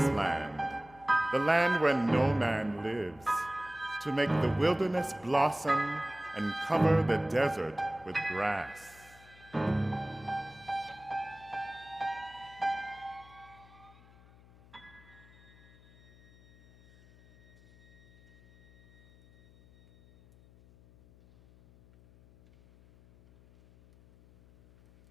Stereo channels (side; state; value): left; noise; hum, 25 dB below the sound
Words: the land where no man lives, to make the wilderness blossom and cover the desert with grass?